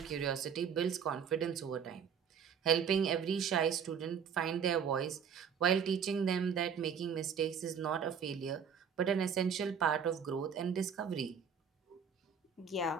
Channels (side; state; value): left; quieter; 7.2 dB